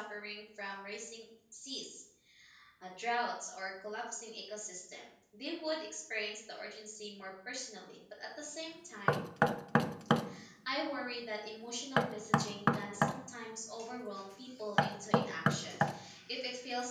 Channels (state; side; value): identical; both; correlation 1.00